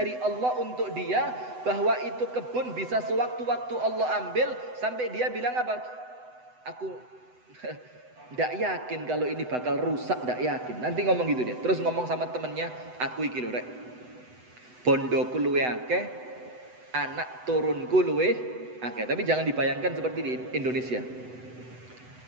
Allah untuk dia. Bahwa itu kebun bisa sewaktu-waktu Allah ambil. Sampai dia bilang apa? Aku tidak yakin kalau ini bakal rusak, tidak yakin. Nanti ngomong gitu dia. Terus ngomong sama temennya, aku iki lho rek, bondoku luwe akeh, anak turunku luwe akeh. Tapi jangan dibayangkan seperti di Indonesia.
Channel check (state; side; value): late; left; 8.0 ms